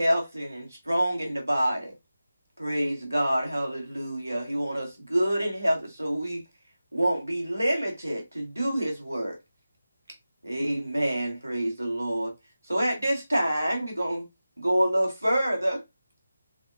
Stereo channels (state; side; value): inverted; both; correlation -0.96